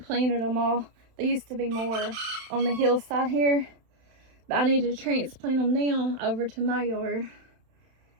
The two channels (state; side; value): late; left; 31 ms